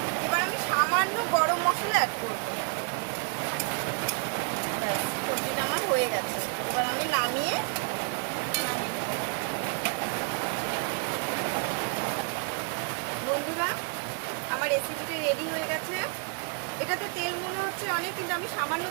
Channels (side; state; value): left; quieter; 37.2 dB